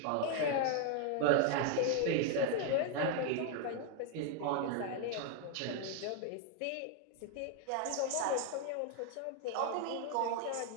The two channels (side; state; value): both; different; correlation 0.00